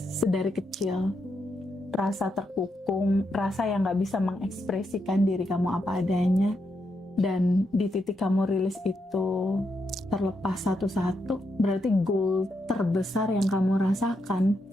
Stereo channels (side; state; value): both; normal; correlation 0.82